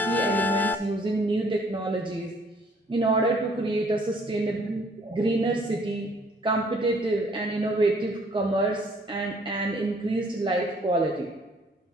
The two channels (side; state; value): both; normal; correlation 0.61